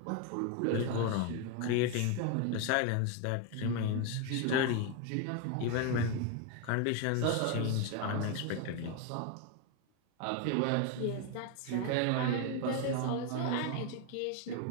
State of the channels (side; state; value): both; different; correlation 0.01